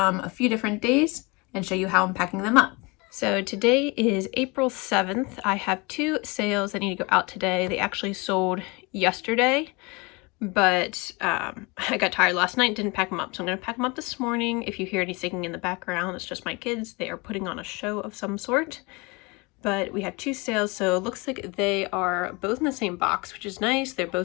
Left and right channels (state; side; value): quieter; right; 26.9 dB